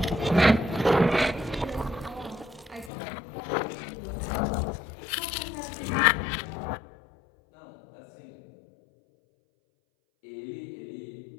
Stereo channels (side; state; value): right; drops out; at 2.9 s